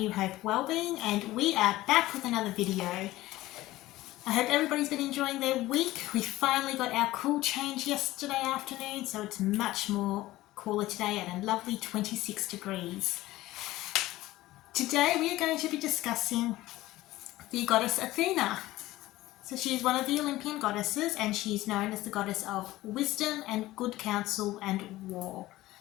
Hope Wellbeing and we are back with another video. I hope everybody's been enjoying their week. We finally got our cool change yesterday afternoon, so it's much more cooler today at a lovely 26 degrees. Today we are going to be discussing the goddess Athena. So she's one of the Olympian goddesses and she's known as the goddess of wisdom and good counsel and war.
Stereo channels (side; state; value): right; quieter; 17.0 dB